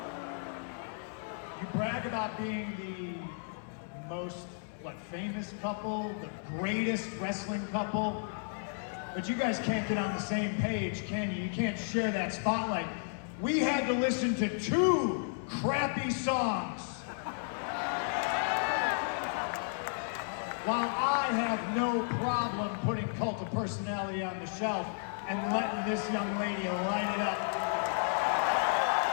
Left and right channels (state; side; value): silent; right; 56 dB below the other